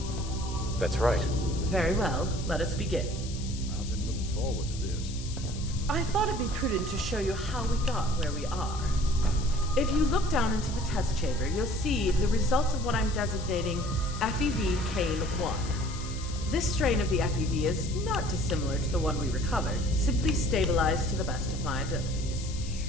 That's right. Very well. Let us begin. I've been looking forward to this. I thought it'd be prudent to show you how we got where we are. If you look down into the test chamber, you'll see the results of what I'm designating FEV Cane 1. This strain of the FEV is not dissimilar to the one we recovered, simply stabilized to the best of my abilities.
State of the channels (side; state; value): left; noise; hiss, 13 dB below the sound